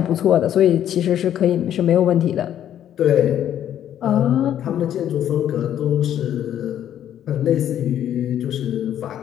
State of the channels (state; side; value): quieter; right; 10.7 dB